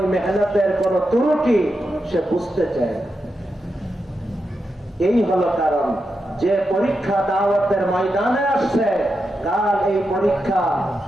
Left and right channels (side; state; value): both; normal; correlation 0.87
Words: মেহনতের কোন ত্রুটি সে বুঝতে চায়। এই হলো কারণ যে পরীক্ষা দাওয়াতের ময়দানে আসছে, কাল এই পরীক্ষা